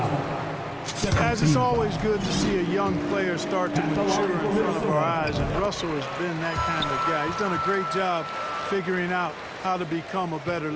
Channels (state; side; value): identical; both; correlation 1.00